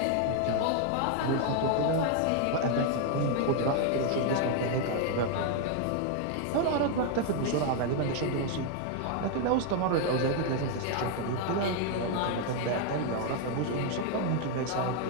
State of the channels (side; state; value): both; different; correlation 0.00